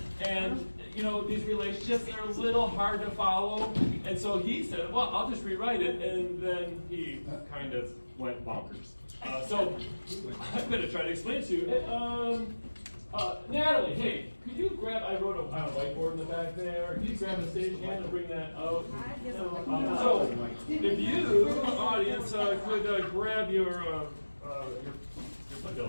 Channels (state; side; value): inverted; both; correlation -1.00